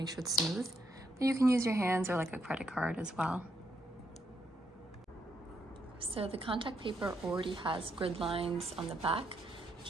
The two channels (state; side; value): normal; both; correlation 0.77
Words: sure it's smooth. But you can use your hands or like a credit card as well. So the contact paper already has grid lines on the back,